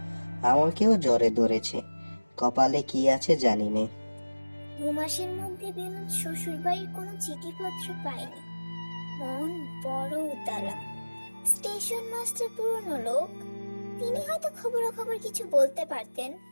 আমাকেও জ্বরে ধরেছে, কপালে কি আছে জানি নে। 2 মাসের মধ্যে বিনোদ শ্বশুর বাড়ির কোনো চিঠিপত্র পায়নি। মন বড় উতালা। স্টেশন মাস্টার পুরনো লোক, তিনি হয়তো খবরাখবর কিছু বলতে পারতেন।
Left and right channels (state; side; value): inverted; both; correlation -1.00